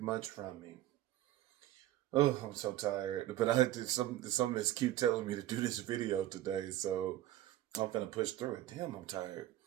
from me. Oh, I'm so tired, but I had to some of this keep telling me to do this video today, so I'm gonna push through it. Damn, I'm tired.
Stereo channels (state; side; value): quieter; left; 14.1 dB